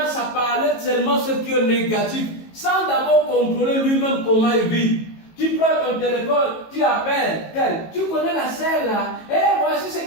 à parler seulement ce qui est négatif, sans d'abord contrôler lui-même comment il vit. Tu prends ton téléphone, tu appelles tel, tu connais la sœur là, et voici ce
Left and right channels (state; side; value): late; right; 18 ms